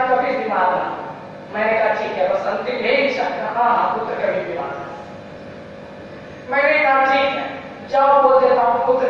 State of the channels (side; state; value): both; identical; correlation 1.00